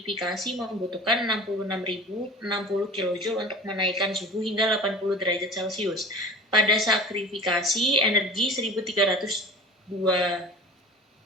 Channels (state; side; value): normal; both; correlation 0.37